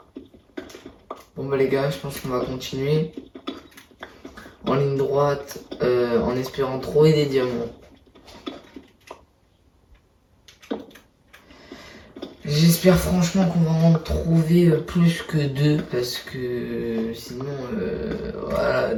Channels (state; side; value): identical; both; correlation 1.00